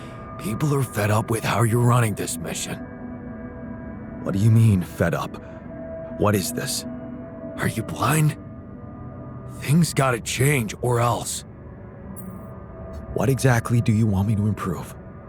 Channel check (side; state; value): both; identical; correlation 1.00